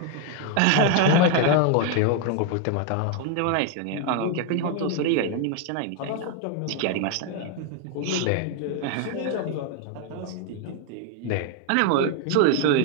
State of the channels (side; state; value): both; different; correlation 0.00